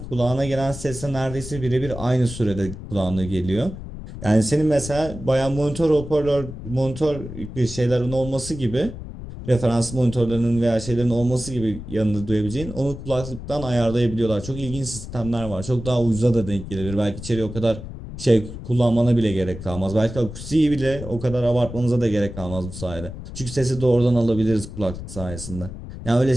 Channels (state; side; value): noise; left; rumble, 11 dB below the sound